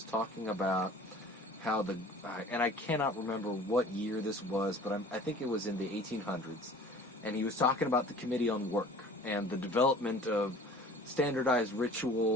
talking about how and I cannot remember what year this was, but I think it was in the 1800s, and he was talking about the Committee on Work and the development of standardized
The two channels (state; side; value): normal; both; correlation 0.46